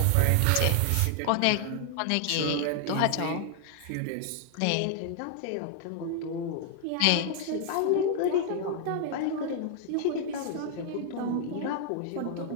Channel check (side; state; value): both; different; correlation 0.00